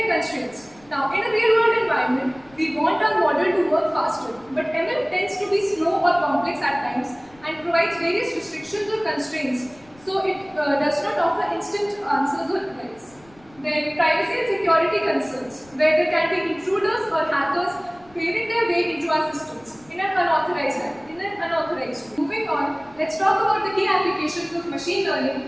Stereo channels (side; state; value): left; noise; rumble, 28 dB below the sound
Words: constraints. Now, in a real-world environment, we want our model to work faster, but ML tends to be slow or complex at times and provides various restrictions or constraints. So it does not offer instant answers or replies. Then privacy and security concerns, where there can be intruders or hackers paving their way into our systems in an unauthorized way. Moving on, let's talk about the key applications of machine learning